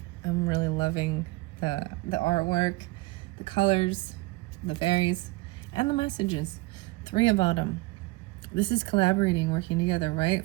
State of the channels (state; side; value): quieter; left; 21.9 dB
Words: loving the artwork, the colors, the fairies, and the messages. 3 of Autumn. This is collaborating, working together, right?